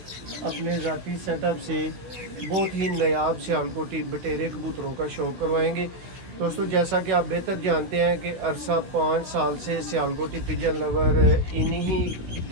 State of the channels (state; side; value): late; left; 16 ms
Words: अपने ज़ाती सेटअप से बहुत ही नायाब सियालकोटी बटेरे कबूतरों का शौक़ करवाएंगे। दोस्तों जैसा कि आप बेहतर जानते हैं कि अरसा 5 साल से सियालकोटी पिजन लवर इन्हीं ही